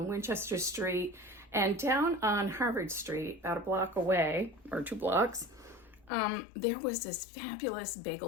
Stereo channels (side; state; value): right; drops out; at 6.1 s